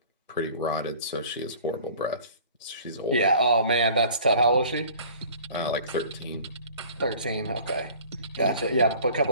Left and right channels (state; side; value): inverted; both; correlation -0.48